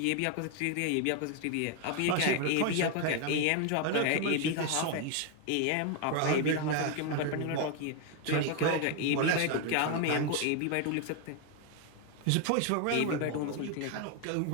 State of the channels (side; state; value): both; different; correlation 0.01